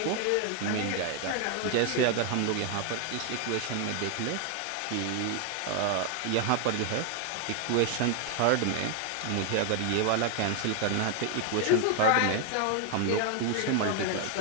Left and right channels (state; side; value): different; both; correlation 0.01